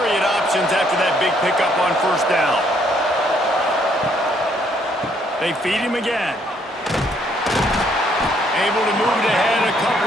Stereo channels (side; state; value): both; normal; correlation 0.68